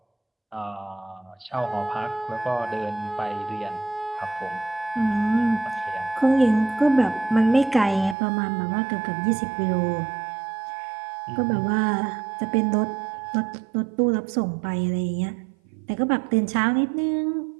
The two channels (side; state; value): left; drops out; at 8.2 s